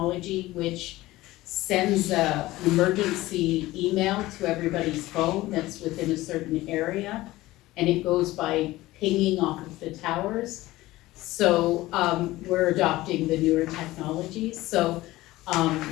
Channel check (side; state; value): right; quieter; 17.7 dB